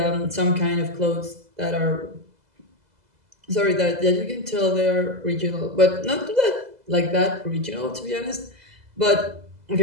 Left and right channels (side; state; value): left; late; 2.0 ms